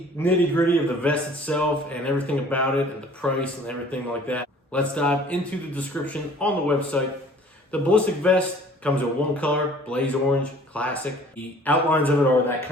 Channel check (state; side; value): normal; both; correlation 0.51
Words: nitty-gritty of the vest itself and everything about it and the price and everything like that, let's dive into the description on the website. The Ballistic Vest comes in one color, blaze orange, classic. The outlines of it are that